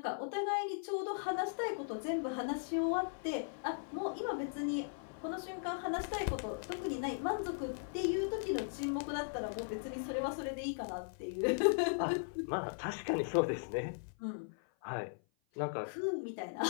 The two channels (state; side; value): silent; right; 52 dB below the other